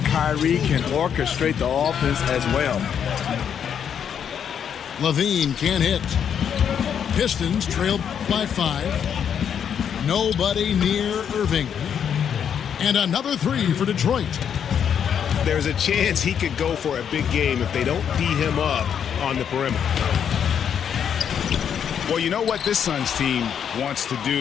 can orchestrate the offense as well. Levine can't hit. Pistons trail by 5. Nobody near Irving. And another 3 for Detroit. There's a chance he could go for a big game if they don't D him up on the perimeter. Well, you know what this Suns team wants to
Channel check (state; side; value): quieter; right; 8.2 dB